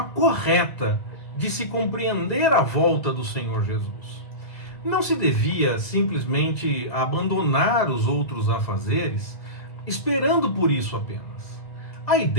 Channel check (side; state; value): right; late; 1.7 ms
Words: correta de se compreender a volta do Senhor Jesus. Não se devia simplesmente abandonar os outros afazeres, esperando por isso apenas. A